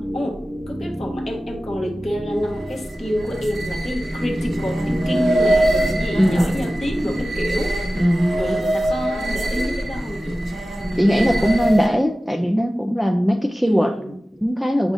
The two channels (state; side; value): normal; both; correlation 0.95